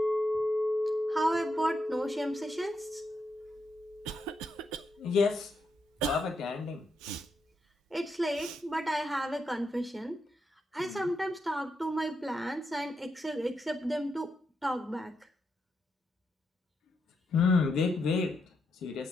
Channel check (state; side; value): normal; both; correlation 0.82